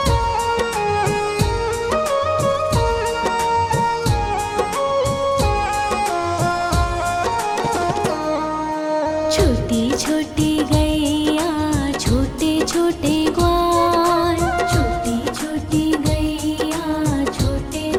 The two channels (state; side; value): identical; both; correlation 1.00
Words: छोटी छोटी गैया छोटे छोटे ग्वाल, छोटी छोटी गैया छोटे